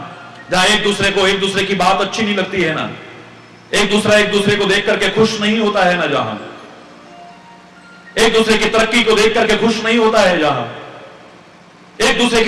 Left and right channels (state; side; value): identical; both; correlation 1.00